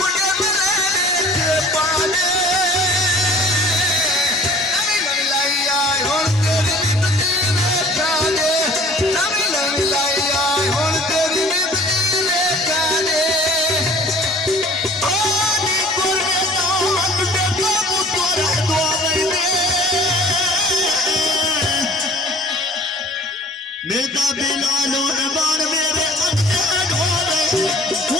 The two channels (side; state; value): both; normal; correlation 0.49